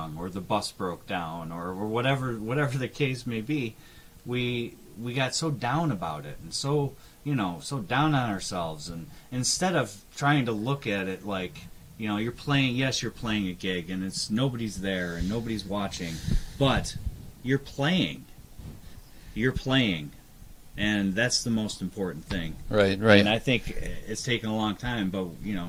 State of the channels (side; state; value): both; identical; correlation 1.00